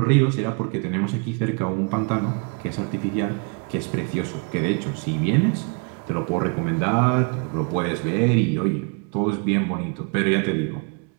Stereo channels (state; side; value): quieter; left; 36.3 dB